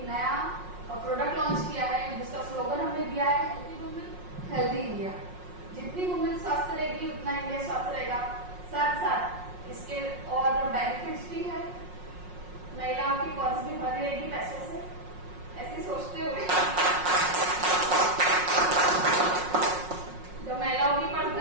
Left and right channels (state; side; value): late; left; 5.5 ms